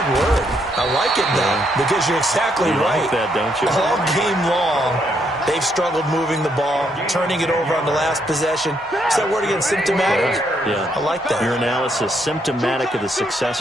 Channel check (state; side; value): normal; both; correlation 0.74